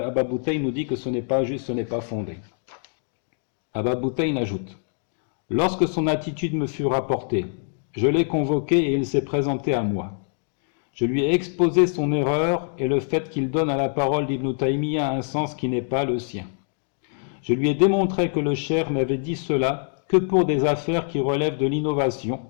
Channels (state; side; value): silent; right; 62 dB below the other